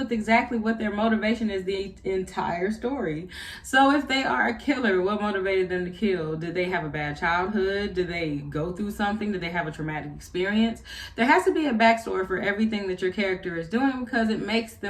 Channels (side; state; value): both; identical; correlation 1.00